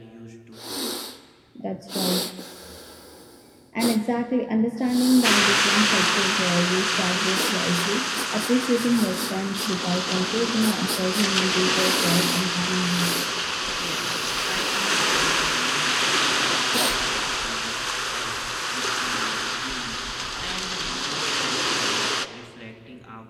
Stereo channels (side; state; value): both; identical; correlation 1.00